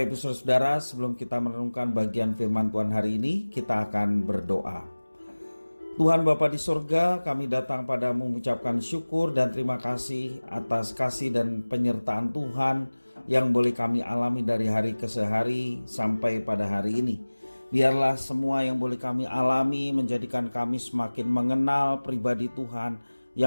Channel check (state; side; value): inverted; both; correlation -1.00